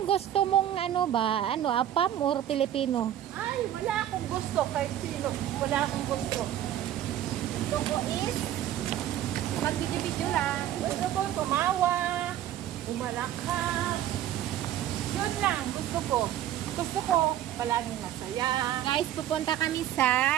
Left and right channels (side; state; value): left; quieter; 11.8 dB